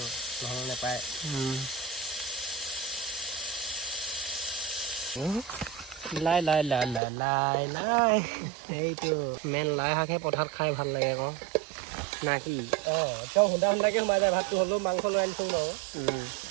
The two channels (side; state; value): left; drops out; at 7.0 s